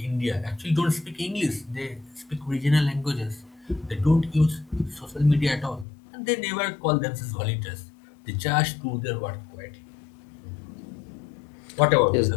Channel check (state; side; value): drops out; right; at 5.9 s